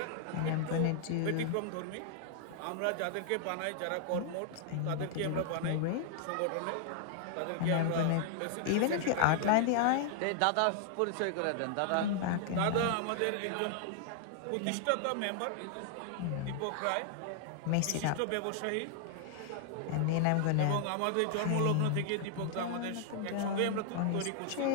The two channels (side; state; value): both; different; correlation 0.00